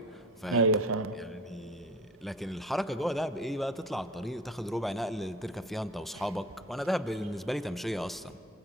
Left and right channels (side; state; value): both; normal; correlation 0.39